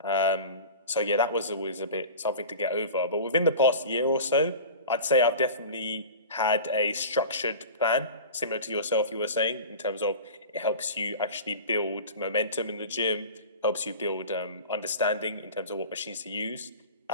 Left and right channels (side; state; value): both; inverted; correlation -0.35